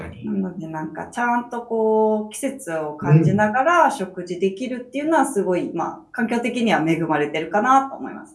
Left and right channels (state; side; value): identical; both; correlation 1.00